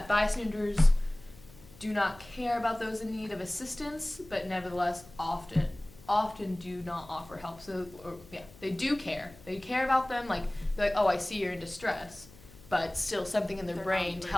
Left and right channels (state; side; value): noise; left; hum, 22 dB below the sound